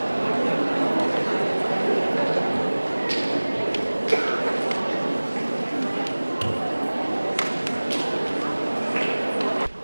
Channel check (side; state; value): both; inverted; correlation -1.00